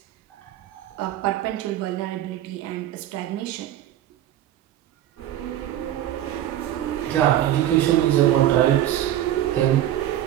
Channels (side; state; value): left; quieter; 12.4 dB